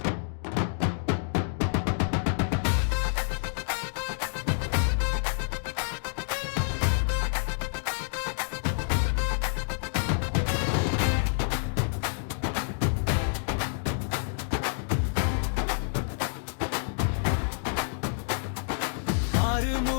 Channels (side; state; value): right; silent; digital silence